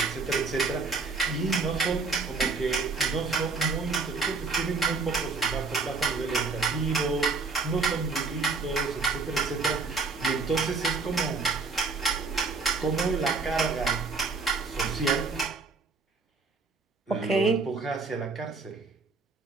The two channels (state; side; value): quieter; left; 4.3 dB